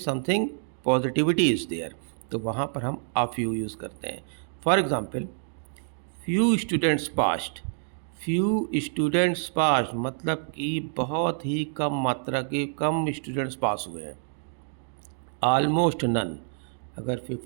something positivity is there, तो वहाँ पर हम अ फ्यू यूज़ करते हैं। For example, few students passed. Few students passed मतलब कि बहुत ही कम मात्रा के कम स्टूडेंट्स पास हुए हैं। ऑलमोस्ट नन, अगर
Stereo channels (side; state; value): left; silent; digital silence